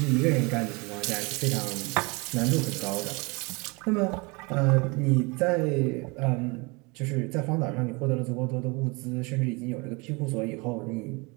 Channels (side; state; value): left; quieter; 27.9 dB